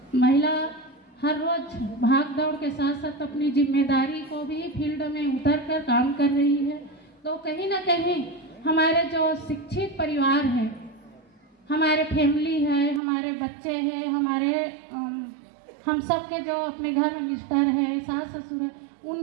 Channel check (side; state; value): left; drops out; at 13.0 s